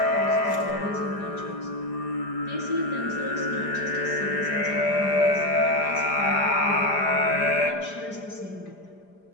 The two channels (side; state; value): right; late; 5.0 ms